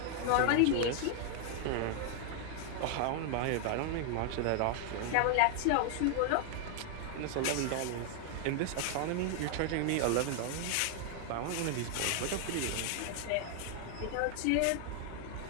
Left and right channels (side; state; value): both; different; correlation 0.00